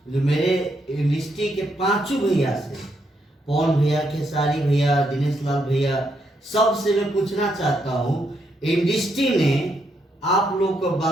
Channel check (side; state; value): both; normal; correlation 0.77